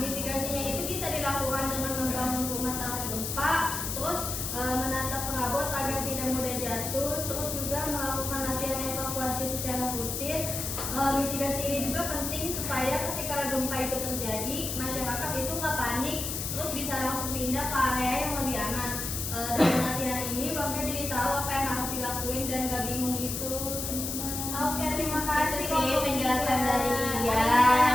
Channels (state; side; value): noise; left; hiss, 4 dB below the sound